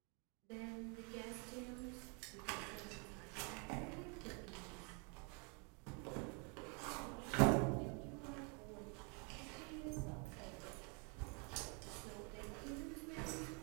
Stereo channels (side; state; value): left; quieter; 35.1 dB